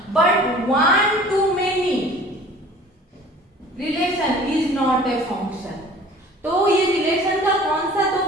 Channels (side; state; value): both; normal; correlation 0.47